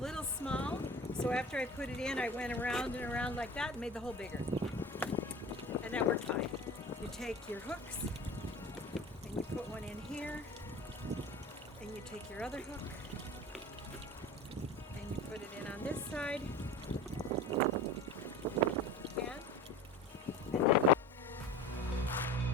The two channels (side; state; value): both; normal; correlation 0.36